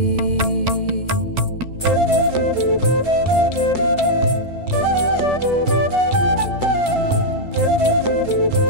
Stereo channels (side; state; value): right; late; 2.2 ms